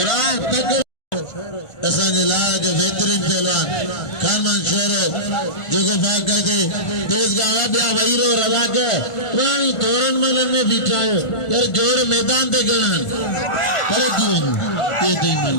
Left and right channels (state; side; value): late; right; 1.4 ms